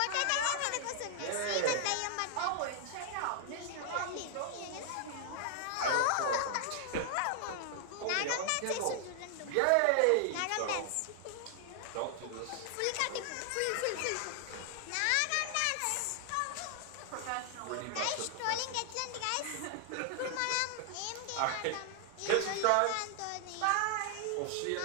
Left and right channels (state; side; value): different; both; correlation 0.00